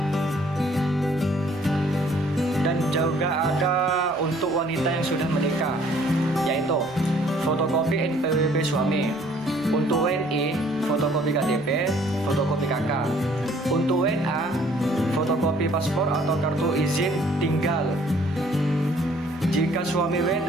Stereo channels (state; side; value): noise; right; rumble, 27 dB below the sound